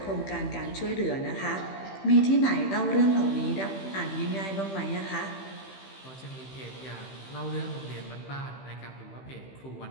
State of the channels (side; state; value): right; late; 15 ms